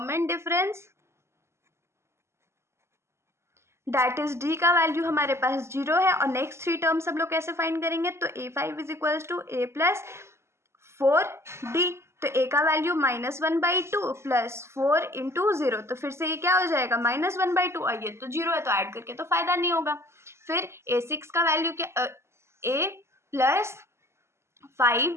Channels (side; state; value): left; late; 0.13 ms